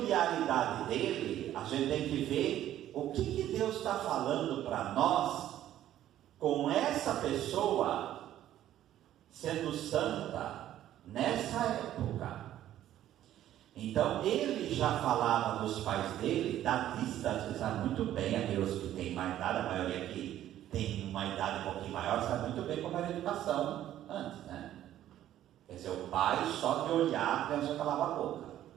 dele, a gente tem que ver o que Deus está falando para nós com essa pessoa sendo santa nessa época. Então ele já falava dos pais dele da distância, sabe muito bem, aqueles que têm mais idade, a maioria que tem uma idade um pouquinho maior, sabe muito bem como era a educação antes, né? Quer dizer, o pai só de olhar a criança calava a boca,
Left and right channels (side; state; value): left; quieter; 12.4 dB